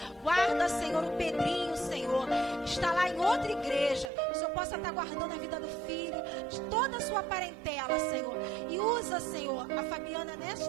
Guarda, Senhor, o Pedrinho, Senhor, está lá em outra igreja. O Senhor possa estar guardando a vida do filho, de toda a sua parentela, Senhor. E usa, Senhor, a Fabiana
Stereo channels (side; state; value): left; drops out; at 4.1 s